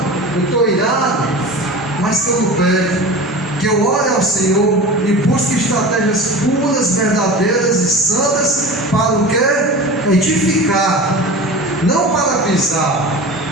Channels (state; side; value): normal; both; correlation 0.33